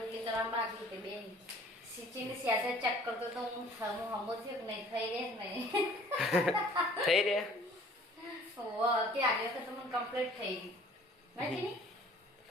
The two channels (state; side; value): normal; both; correlation 0.53